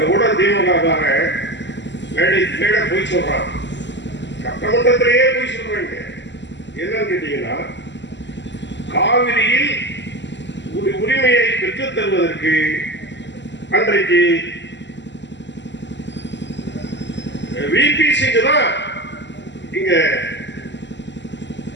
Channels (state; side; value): late; right; 0.52 ms